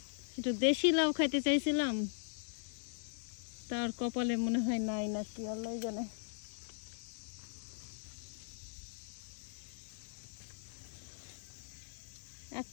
একটু দেশি লাউ খাইতে চাইছিলাম, তার কপালে মনে হয় নাই নাকি, আল্লাহ জানে।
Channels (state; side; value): silent; right; digital silence